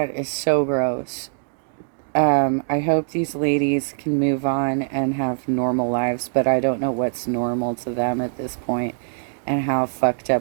is so gross. I hope these ladies can move on and have normal lives, but I don't know what's normal to them at this point and how fucked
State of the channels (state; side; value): silent; left; digital silence